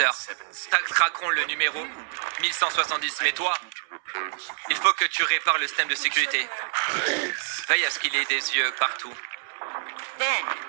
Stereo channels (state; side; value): silent; left; 61 dB below the other